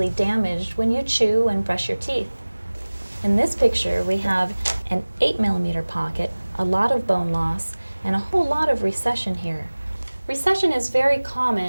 damaged when you chew and brush your teeth. In this picture, we have an 8mm pocket, a lot of bone loss, and a whole lot of recession here. Recession is very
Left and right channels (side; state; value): both; inverted; correlation -1.00